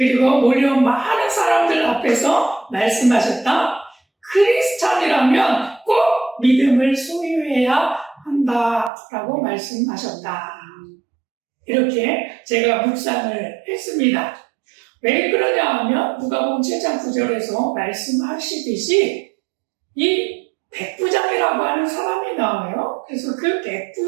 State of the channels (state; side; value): drops out; left; at 8.9 s